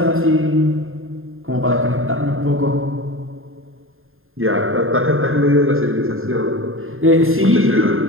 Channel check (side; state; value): left; late; 0.61 ms